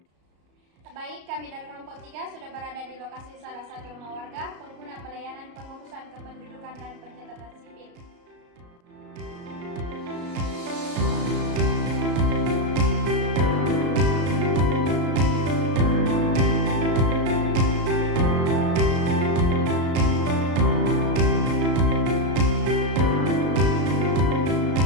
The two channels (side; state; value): left; late; 33 ms